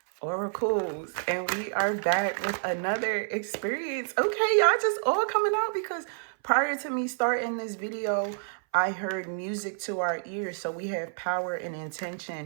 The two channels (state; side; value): silent; left; 58 dB below the other